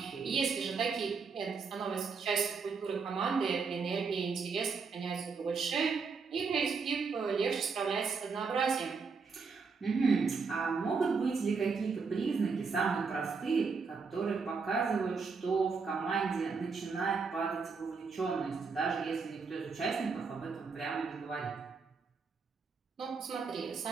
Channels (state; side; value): quieter; left; 5.0 dB